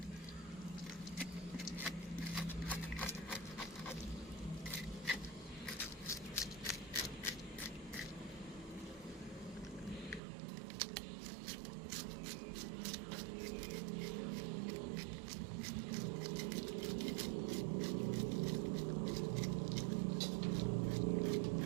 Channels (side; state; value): left; drops out; at 10.2 s